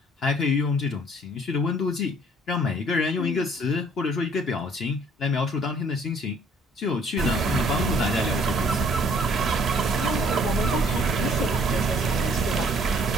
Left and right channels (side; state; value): both; normal; correlation 0.59